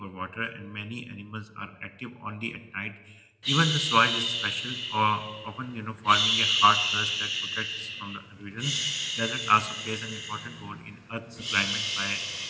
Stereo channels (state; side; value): identical; both; correlation 1.00